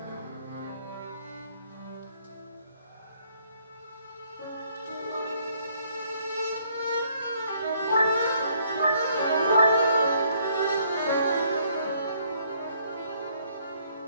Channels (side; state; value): both; inverted; correlation -0.65